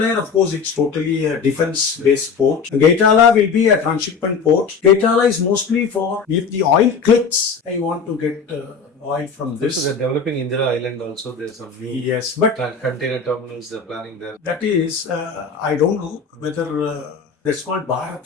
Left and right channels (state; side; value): quieter; right; 5.4 dB